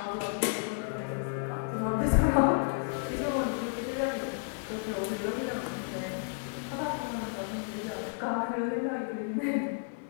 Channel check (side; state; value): right; silent; digital silence